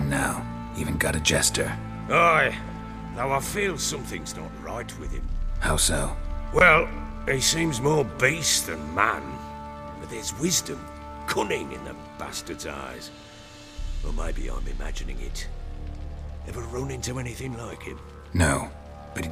now. Even got a jester. Aye, though I feel something's not right with him. How so? Well, he seems more beast than man, but there's wisdom, cunning in the bastard's eyes. Or maybe I'm imagining it. Ever run into anything like him? No, but he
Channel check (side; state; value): both; identical; correlation 1.00